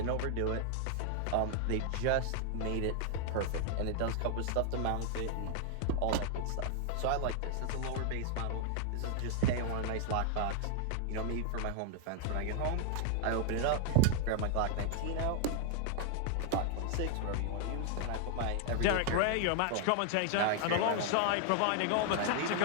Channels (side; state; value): both; different; correlation 0.00